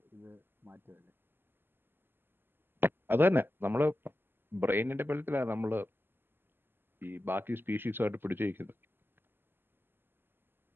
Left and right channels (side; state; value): left; late; 0.099 ms